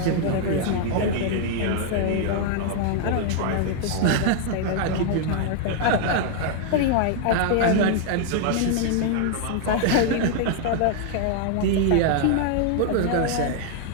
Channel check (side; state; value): both; different; correlation 0.00